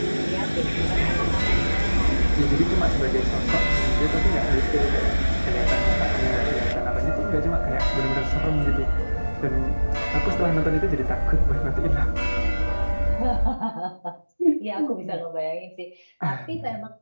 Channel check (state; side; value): inverted; both; correlation -1.00